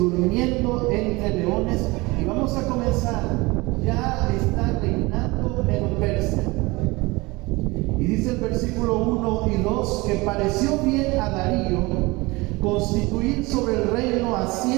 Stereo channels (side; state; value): left; quieter; 23.3 dB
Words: entre leones. Y vamos a comenzar. Ya está reinando en Persia. Y dice el versículo 1 y 2 que pareció bien a Darío constituir sobre el reino a